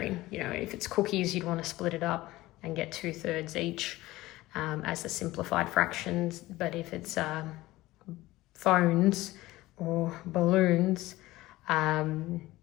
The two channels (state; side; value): quieter; right; 18.0 dB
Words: If it's cookies, you'd want to split it up and get 2/3 each as the simplified fractions. But if it's phones or balloons